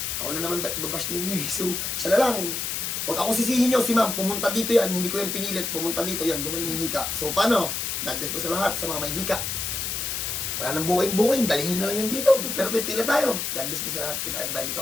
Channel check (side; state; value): left; noise; hiss, 2 dB below the sound